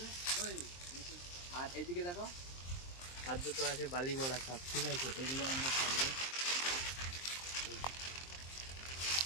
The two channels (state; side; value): late; right; 23 ms